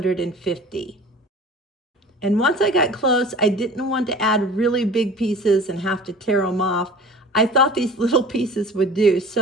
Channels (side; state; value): both; normal; correlation 0.41